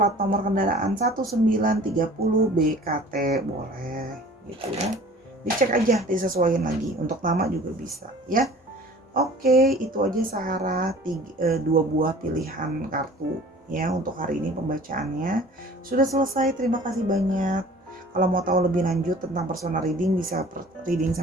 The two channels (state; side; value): normal; both; correlation 0.47